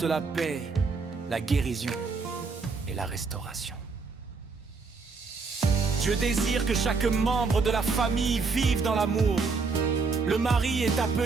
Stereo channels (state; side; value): quieter; left; 4.5 dB